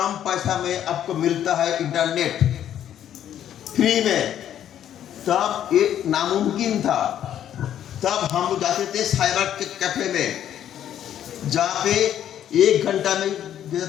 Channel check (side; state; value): right; quieter; 10.6 dB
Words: पैसा में आपको मिलता है इंटरनेट फ्री में, तब ये नामुमकिन था। तब हम जाते थे साइबर के कैफे में, जहां पे 1 घंटा में देता